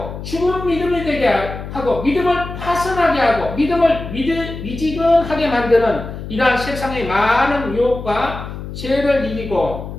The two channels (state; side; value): noise; left; hum, 9 dB below the sound